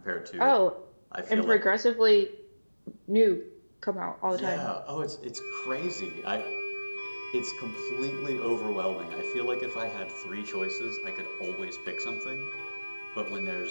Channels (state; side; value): inverted; both; correlation -1.00